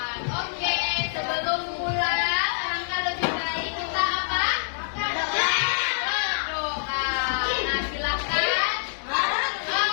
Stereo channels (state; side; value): silent; right; digital silence